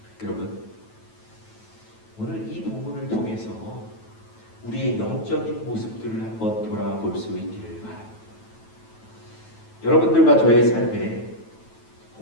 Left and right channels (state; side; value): late; right; 9.1 ms